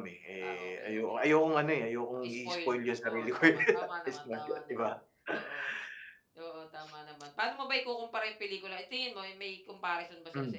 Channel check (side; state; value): both; identical; correlation 1.00